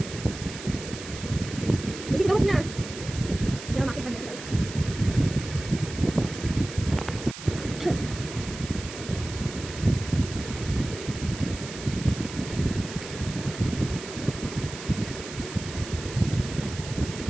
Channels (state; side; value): noise; right; hiss, 11 dB below the sound